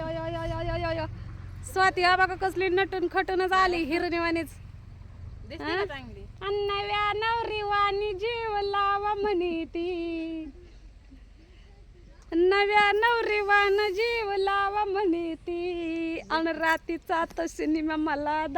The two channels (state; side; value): identical; both; correlation 1.00